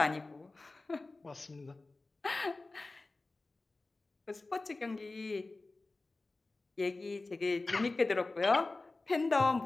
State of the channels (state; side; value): quieter; right; 3.3 dB